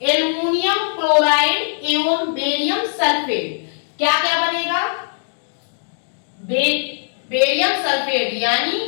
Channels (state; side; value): silent; right; digital silence